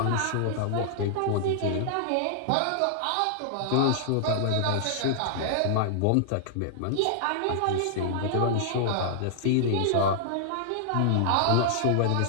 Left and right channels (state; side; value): different; both; correlation -0.01